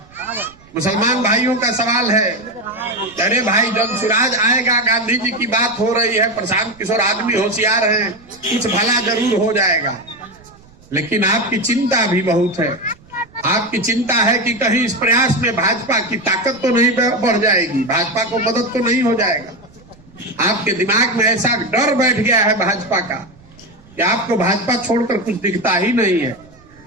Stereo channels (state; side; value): noise; right; rumble, 26 dB below the sound